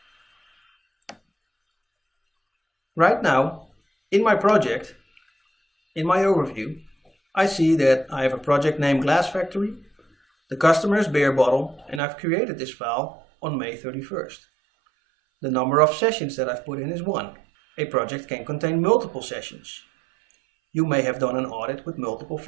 Right now, in my project, in my overview, I see that I have a project named Glass Factory, the customer is Beer Bottle, and I've created this file on May 31st. The number of sessions that I've put in is 1. A project can contain multiple sessions. You may have done an audit with multiple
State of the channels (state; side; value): drops out; left; at 12.0 s